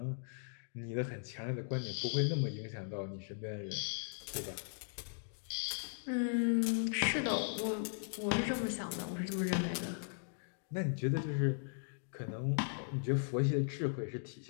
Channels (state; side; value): silent; right; digital silence